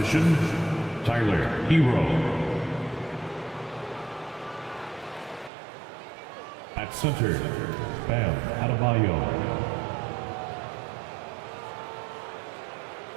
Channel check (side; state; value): left; drops out; at 5.5 s